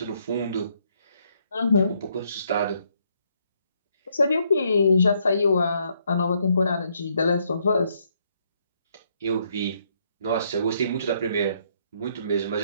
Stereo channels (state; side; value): inverted; both; correlation -0.72